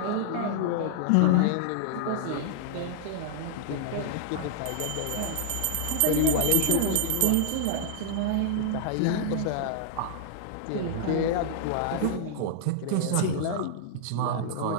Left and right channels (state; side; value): different; both; correlation -0.01